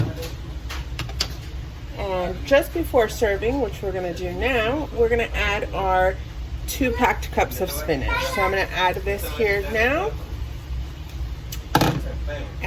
And just before serving, which we're going to do now, we're going to add our 2 packed cups of spinach. So I'm going to add this here now.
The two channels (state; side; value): identical; both; correlation 1.00